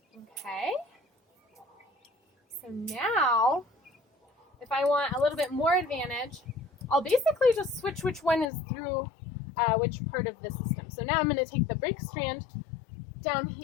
Okay, so now, if I want a little bit more advantage, I'll basically just switch which one is through which part of the system. So now I'm going to take the brake strand down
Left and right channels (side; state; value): right; drops out; at 8.5 s